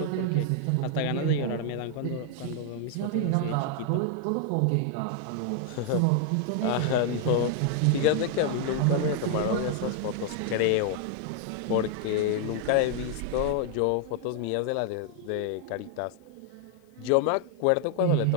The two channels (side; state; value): both; different; correlation 0.00